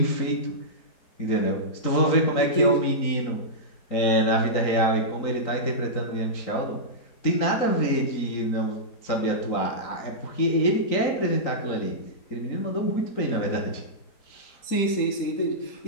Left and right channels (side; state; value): right; late; 3.9 ms